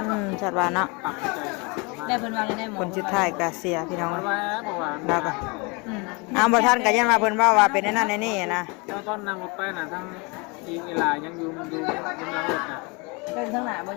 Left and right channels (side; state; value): right; quieter; 29.5 dB